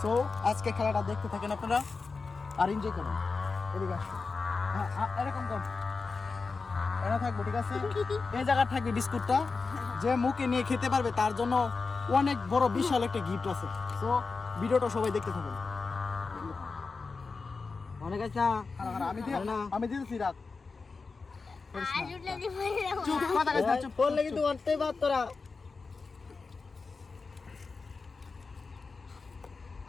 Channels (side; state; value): right; quieter; 4.4 dB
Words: সো আজকে খেলাটা দেখতে থাকেন আপনারা আর এনজয় করুন। এদিকে আসুন, এরকম কর, এটা থাকবো, ঠিক আছে? এই জায়গা থাকবে বিস্কুটটা, যে মুখে নিয়ে খেতে পারবে তার জন্য অনেক বড় বিশাল একটা গিফট আছে। সো ভিডিওটা সবাই দেখতে থাকুন। অনেক আছে আমি দিতেছি রাত